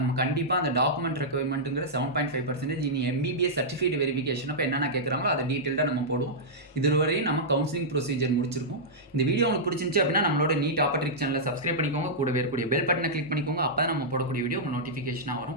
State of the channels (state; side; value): normal; both; correlation -0.10